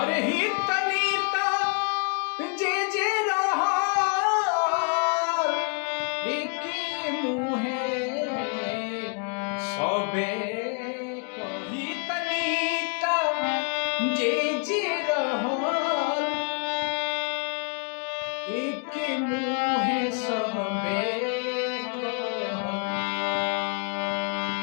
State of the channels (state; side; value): quieter; right; 37.8 dB